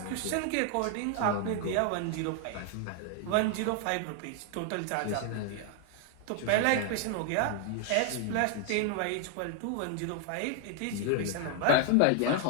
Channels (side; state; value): both; different; correlation 0.00